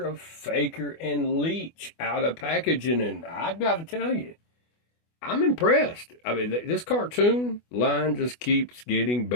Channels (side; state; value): right; late; 24 ms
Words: Faker, and Leech out of packaging, and I've got to tell you, I'm impressed. I mean, this cartoon line just keeps getting